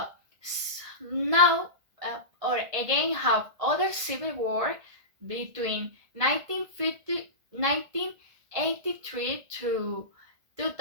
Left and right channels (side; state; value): left; late; 1.8 ms